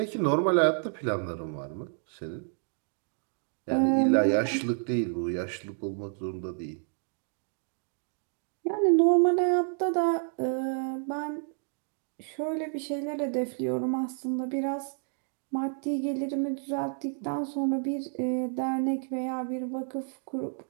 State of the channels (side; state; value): left; silent; 58 dB below the other